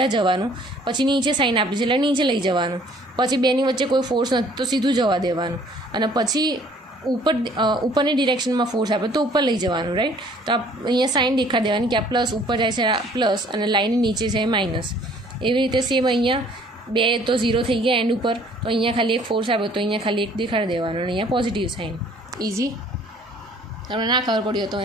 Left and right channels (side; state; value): both; normal; correlation 0.57